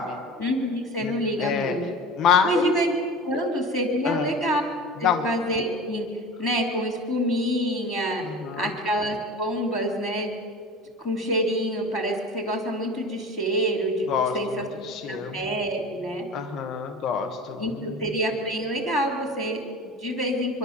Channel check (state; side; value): normal; both; correlation 0.35